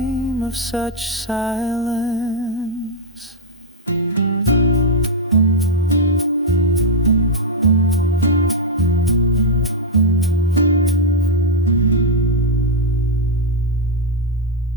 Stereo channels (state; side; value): normal; both; correlation -0.02